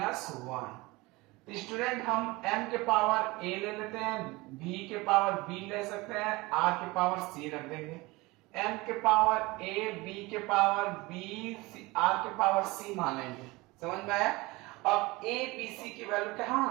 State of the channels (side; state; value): left; quieter; 22.5 dB